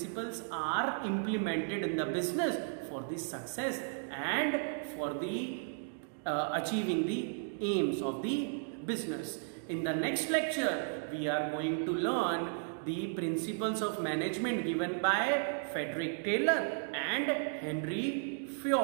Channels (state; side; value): silent; left; digital silence